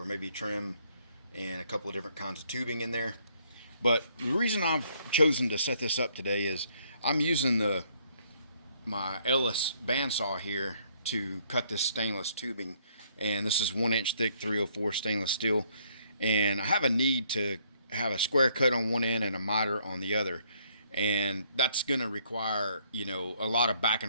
maybe trim, and a couple of different kinds of tubing in there. But the reason I've chosen to set this up today is I'm using my Ellis bandsaw here to cut this stainless tubing, and this is 1-inch thick 304 stainless steel, and I have a need to have a square cut on one end and a miter on the other, and that's going to require a lot of back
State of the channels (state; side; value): inverted; both; correlation -0.66